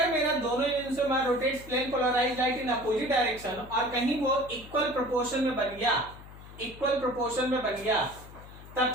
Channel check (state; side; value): noise; left; hum, 17 dB below the sound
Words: मेरा दोनों enantiomer rotates plane polarised light in opposite direction और कहीं वो इक्वल प्रोपोर्शन में बन गया, इक्वल प्रोपोर्शन में बन गया, तब